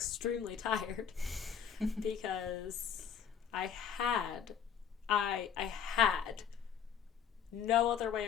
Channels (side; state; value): right; quieter; 7.9 dB